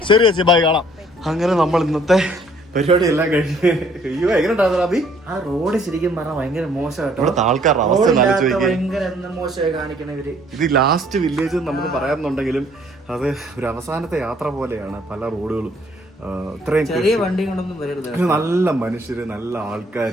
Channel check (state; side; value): normal; both; correlation 0.61